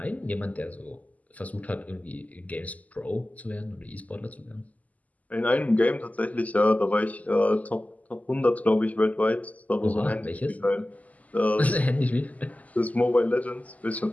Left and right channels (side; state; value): right; late; 0.076 ms